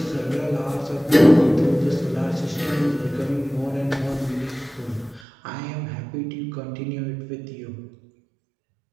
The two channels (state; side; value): drops out; left; at 5.2 s